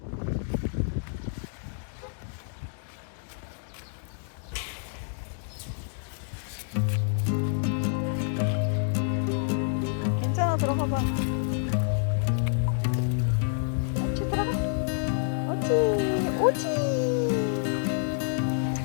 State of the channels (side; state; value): right; silent; digital silence